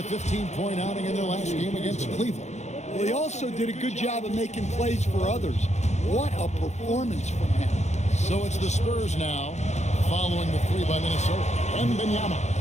15-point outing in their last game against Cleveland. Well, he also did a good job of making plays for others. What a performance from him. So it's the Spurs now, following the three by Minnesota.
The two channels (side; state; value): right; late; 0.33 ms